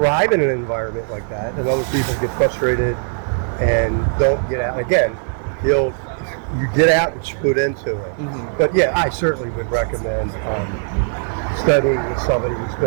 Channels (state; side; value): silent; left; 64 dB below the other